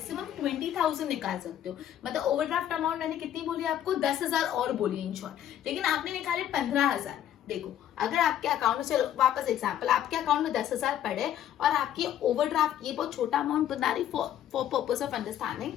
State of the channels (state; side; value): quieter; right; 10.9 dB